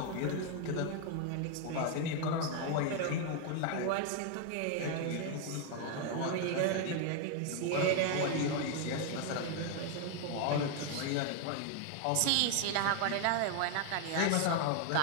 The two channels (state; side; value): different; both; correlation 0.01